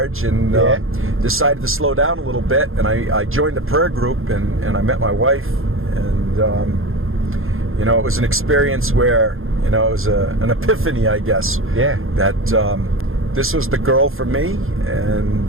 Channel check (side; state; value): left; late; 0.60 ms